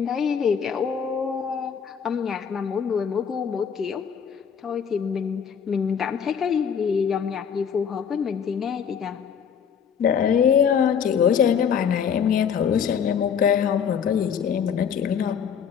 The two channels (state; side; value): quieter; right; 7.3 dB